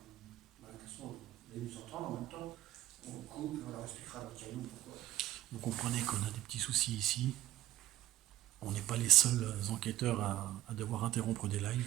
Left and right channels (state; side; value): quieter; left; 14.3 dB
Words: Bah, de toute façon, vous allez nous entendre en même temps. On coupe et on leur expliquera dans le caillou pourquoi. Vous comprenez qu'on a des petits soucis ici. On n'est pas les seuls enquêteurs à devoir interrompre des